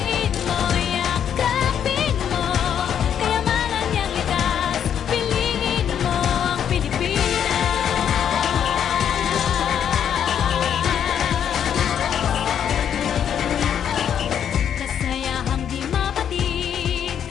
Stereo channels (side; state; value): right; quieter; 8.8 dB